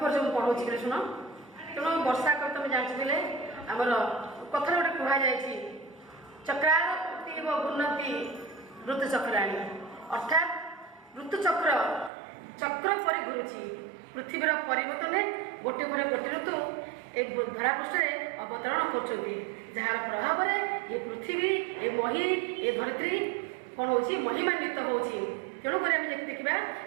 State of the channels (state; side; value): drops out; left; at 12.1 s